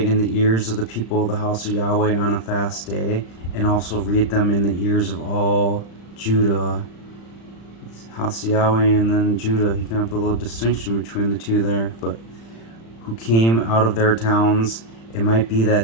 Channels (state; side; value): late; right; 35 ms